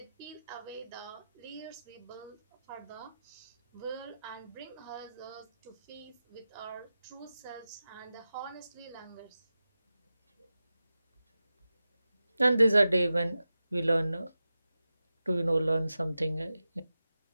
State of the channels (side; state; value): both; inverted; correlation -0.93